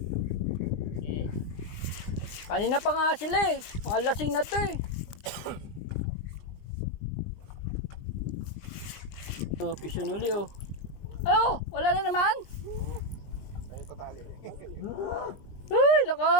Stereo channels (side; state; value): right; late; 20 ms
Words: Kanina pa nga sila eh. Mga lasing na to eh. Oh, pisyon uli oh. Oh, wala na naman. Ganito tali. Uy,